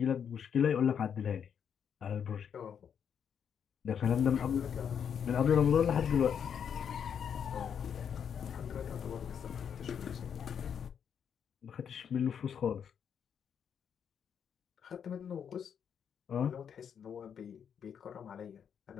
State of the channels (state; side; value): quieter; right; 7.8 dB